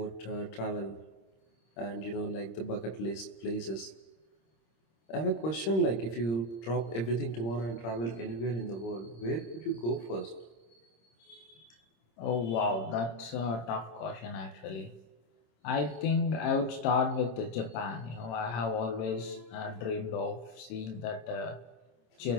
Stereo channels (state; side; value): late; right; 26 ms